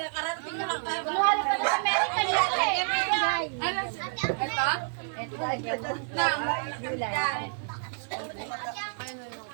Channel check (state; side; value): silent; left; 59 dB below the other